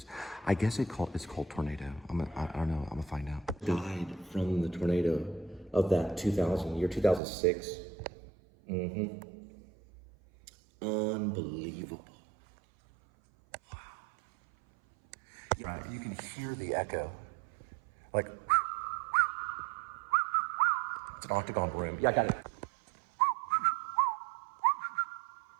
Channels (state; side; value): drops out; left; at 7.2 s